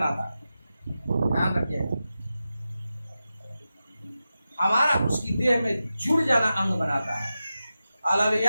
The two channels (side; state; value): both; inverted; correlation -0.92